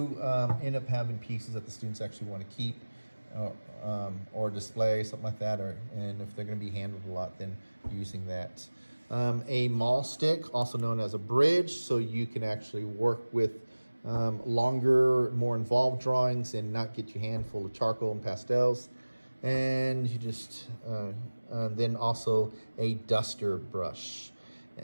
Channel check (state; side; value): inverted; both; correlation -1.00